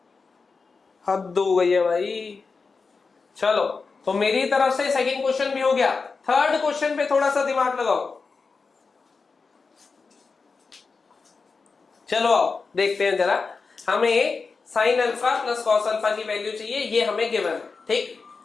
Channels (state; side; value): quieter; right; 4.6 dB